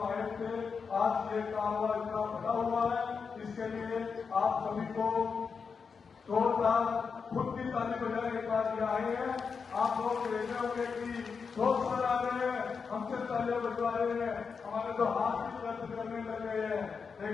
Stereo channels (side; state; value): right; quieter; 5.6 dB